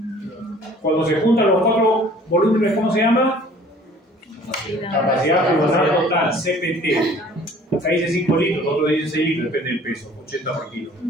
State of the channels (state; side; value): normal; both; correlation 0.52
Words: Cuando se juntan los cuatro volúmenes, ¿cómo se llama? Capacidad pulmonar total, CPT. Acá dice 5 litros, otro dice 6 litros, depende del peso, 80 por kilo.